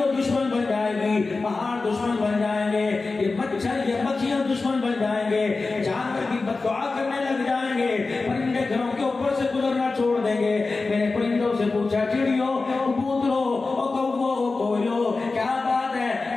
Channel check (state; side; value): quieter; right; 3.8 dB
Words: دشمن بن جائے گی, پہاڑ دشمن بن جائیں گے, یہ مچھر یہ مکھیاں دشمن بن جائیں گے, جانور کی بددعا کرنے لگ جائیں گے, پرندے گھروں کے اوپر سے گزرنا چھوڑ دیں گے. میں نے پرندوں سے پوچھا چڑیوں کبوتروں او کوو او کوئلو کیا بات ہے